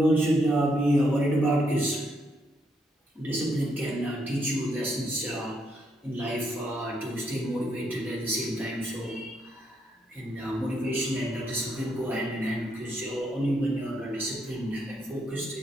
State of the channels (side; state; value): both; normal; correlation 0.76